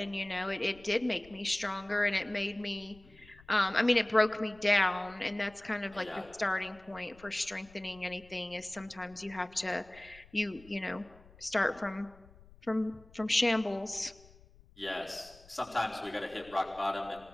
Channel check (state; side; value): noise; left; rumble, 24 dB below the sound